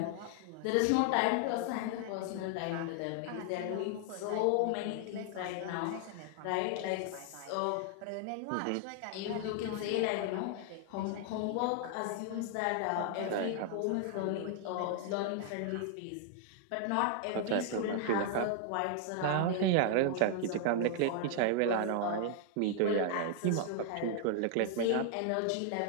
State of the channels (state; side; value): different; both; correlation 0.00